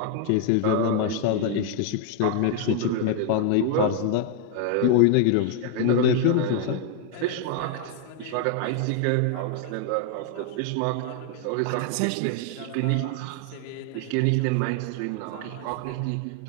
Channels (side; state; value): both; different; correlation 0.00